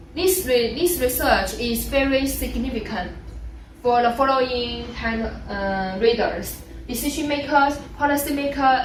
This research is very significant for the following readers: decision makers, policy makers,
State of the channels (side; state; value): both; identical; correlation 1.00